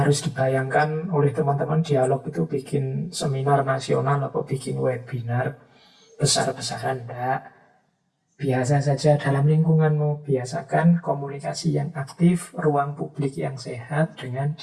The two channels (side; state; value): both; identical; correlation 1.00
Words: dibayangkan oleh teman-teman dialog itu bikin seminar nasional atau bikin webinar besar-besaran, tidak. Biasa saja dalam lingkunganmu, biasakan komunikasi yang aktif, ruang publik yang sehat dengan